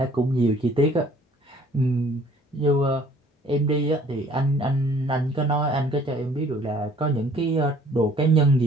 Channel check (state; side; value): normal; both; correlation 0.56